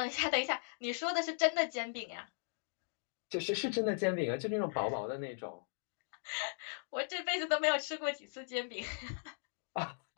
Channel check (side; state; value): right; silent; digital silence